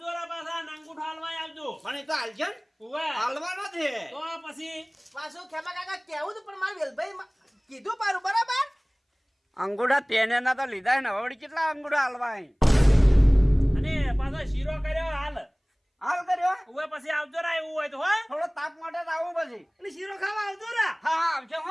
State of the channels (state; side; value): identical; both; correlation 1.00